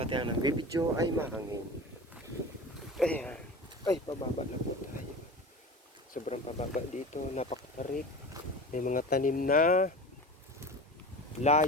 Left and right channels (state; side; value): normal; both; correlation 0.33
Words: ang nagbibidyo ay mahangin. Ayan. Ay, pababa na po tayo. Sobrang pababa dito. Napakatarik. May mga tanim na